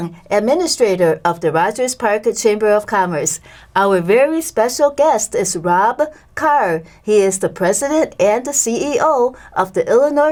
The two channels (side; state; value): both; identical; correlation 1.00